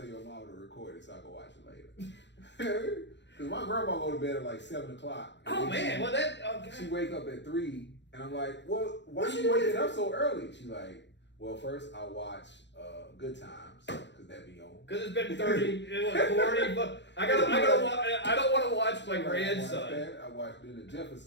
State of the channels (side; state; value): right; late; 0.52 ms